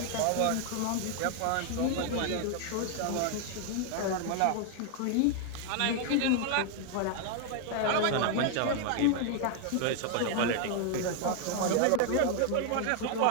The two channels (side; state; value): both; different; correlation 0.00